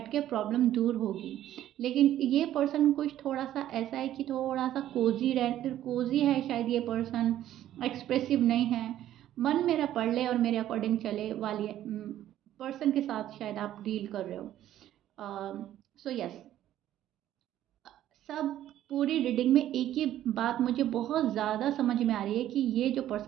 के प्रॉब्लम दूर होगी। लेकिन ये पर्सन कुछ थोड़ा सा ऐसा है कि थोड़ा सा कोजी है शायद ये पर्सन, एक्सप्रेसिव नहीं है, मन मेरा पढ़ ले और मेरे अकॉर्डिंग चले वाली पर्सन के साथ शायद आप डील कर रहे हो। सो यस, सब पूरी रीडिंग में एक ही बात मुझे बहुत ज़्यादा समझ में आ रही है कि ये जो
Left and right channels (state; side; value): quieter; left; 12.4 dB